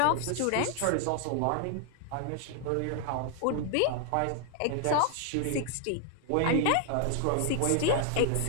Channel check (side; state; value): both; different; correlation 0.00